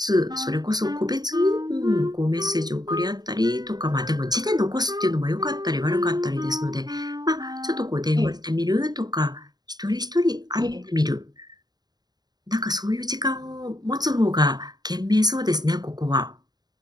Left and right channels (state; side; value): late; left; 0.20 ms